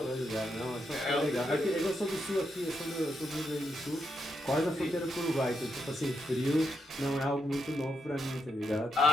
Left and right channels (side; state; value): both; normal; correlation 0.81